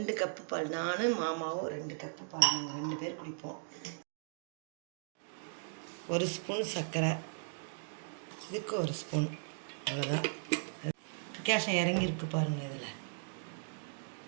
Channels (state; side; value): silent; left; digital silence